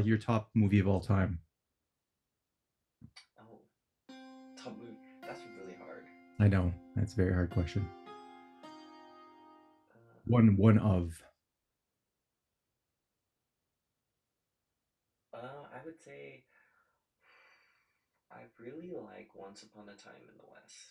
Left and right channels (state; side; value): identical; both; correlation 1.00